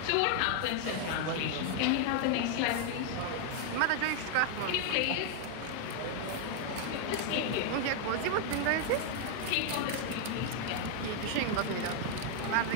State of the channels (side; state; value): both; different; correlation 0.00